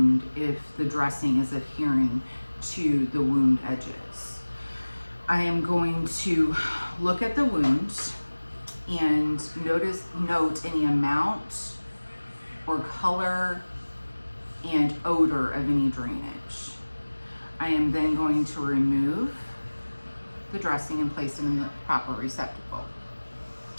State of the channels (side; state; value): both; inverted; correlation -1.00